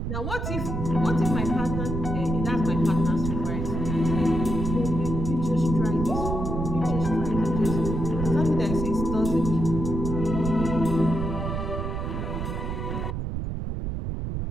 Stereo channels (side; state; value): right; noise; rumble, 3 dB below the sound